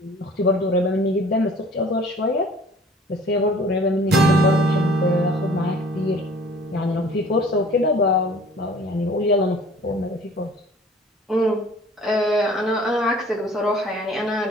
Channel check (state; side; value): normal; both; correlation 0.50